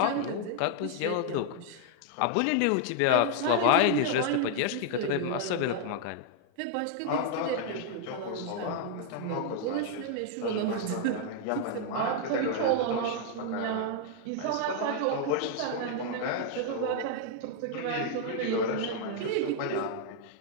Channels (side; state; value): both; different; correlation 0.00